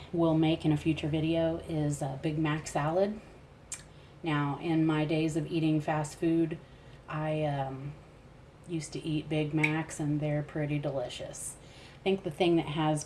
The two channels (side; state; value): both; identical; correlation 1.00